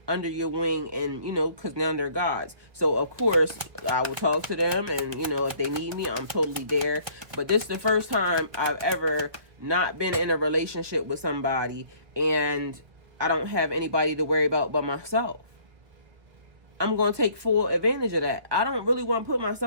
under your wing, and, you know, because now they're God's. So, of course, I will talk to them, and, you know, if they need me, I'm totally there. But this is the first time I've ever not been in a relationship with somebody, and I don't have anybody to worry about but myself. I'm going to take full advantage of that. I don't really want to put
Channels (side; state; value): left; late; 1.8 ms